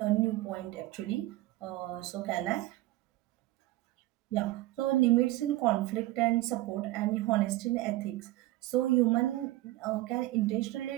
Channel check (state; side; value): quieter; left; 17.3 dB